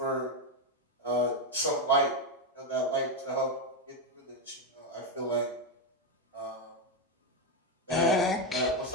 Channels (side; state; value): both; normal; correlation 0.07